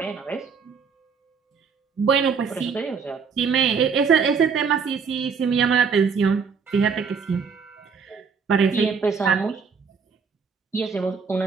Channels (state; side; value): quieter; left; 5.8 dB